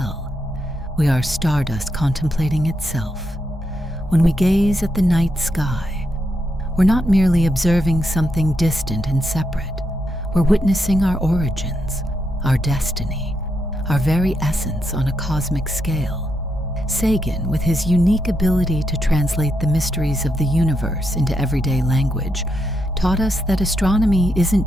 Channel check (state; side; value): normal; both; correlation 0.82